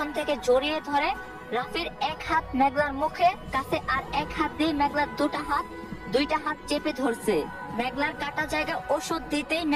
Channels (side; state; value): both; identical; correlation 1.00